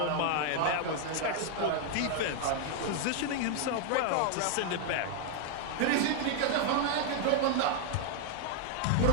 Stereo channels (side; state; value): both; different; correlation 0.00